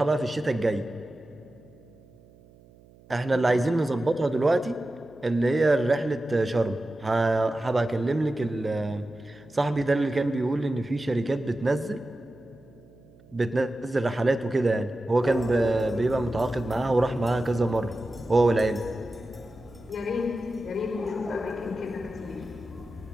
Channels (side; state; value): right; noise; hum, 26 dB below the sound